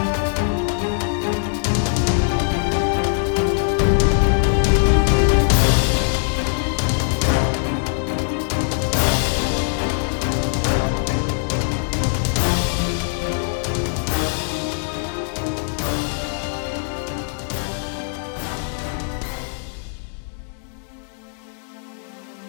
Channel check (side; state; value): right; silent; digital silence